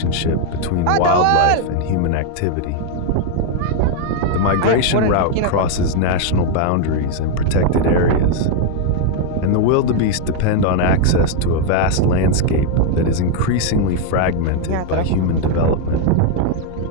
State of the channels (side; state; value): both; different; correlation 0.00